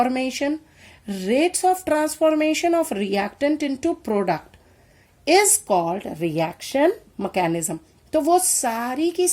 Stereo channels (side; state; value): both; identical; correlation 1.00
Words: rates of transformation of reactant into product is called reaction mechanism। तो वो सारी की